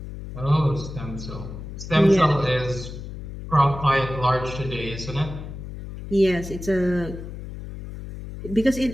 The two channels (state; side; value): noise; left; hum, 10 dB below the sound